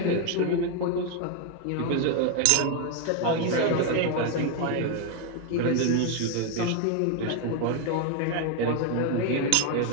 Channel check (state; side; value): different; both; correlation 0.01